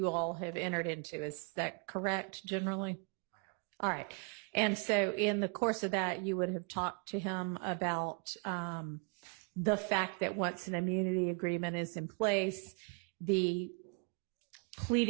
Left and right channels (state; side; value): quieter; left; 33.5 dB